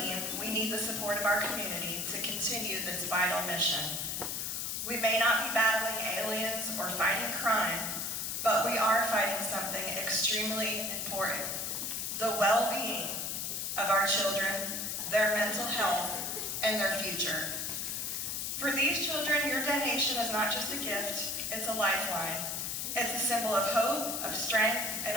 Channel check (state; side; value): noise; left; hiss, 2 dB below the sound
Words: we need the support of our community to continue this vital mission. We may not be battling aliens or fighting crime, but we are fighting something extremely important: the well-being of our children, their mental health, and their future. For these children, your donation is not just a gift, it's a lifeline. It's a symbol of hope, of strength, and